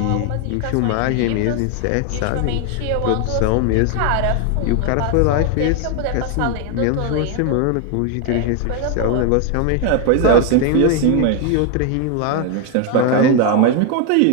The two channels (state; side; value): different; both; correlation 0.01